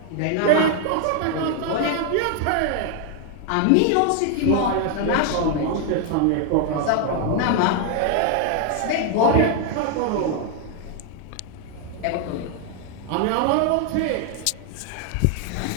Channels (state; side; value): different; both; correlation 0.00